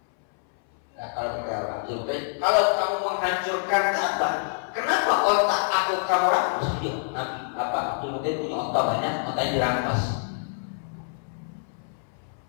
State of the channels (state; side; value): silent; right; 61 dB below the other